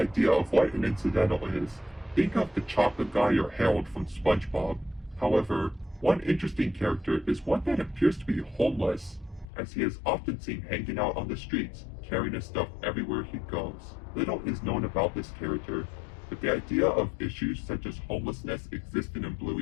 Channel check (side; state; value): right; drops out; at 9.5 s